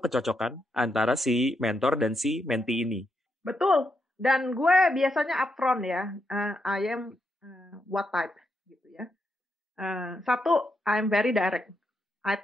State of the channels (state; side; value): normal; both; correlation 0.81